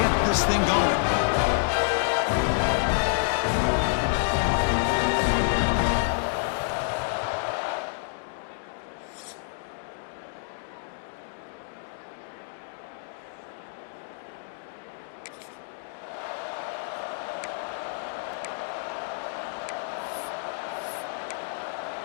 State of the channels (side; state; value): right; silent; digital silence